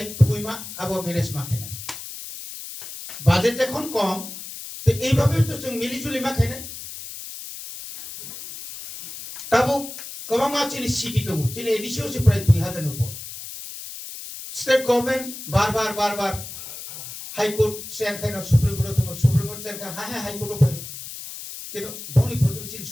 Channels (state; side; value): noise; left; hiss, 11 dB below the sound